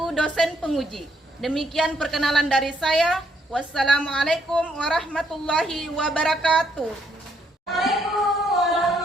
dosen penguji. Demikian perkenalan dari saya. Wassalamualaikum warahmatullahi wabarakatuh.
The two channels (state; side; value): normal; both; correlation 0.72